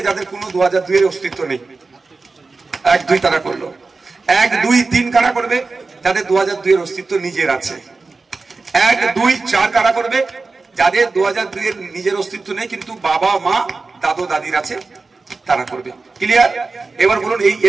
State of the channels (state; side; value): quieter; left; 3.9 dB